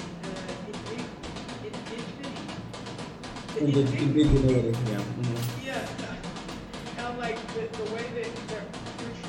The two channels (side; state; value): both; identical; correlation 1.00